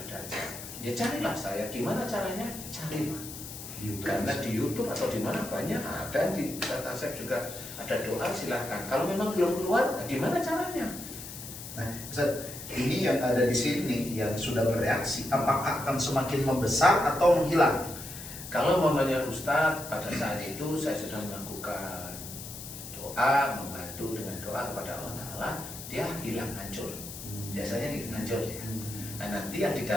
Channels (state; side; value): noise; left; hiss, 11 dB below the sound